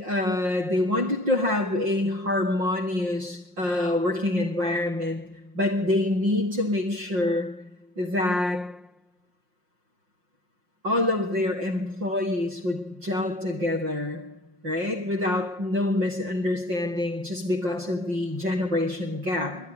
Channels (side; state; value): left; late; 5.6 ms